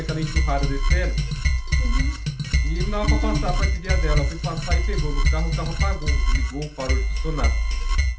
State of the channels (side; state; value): both; identical; correlation 1.00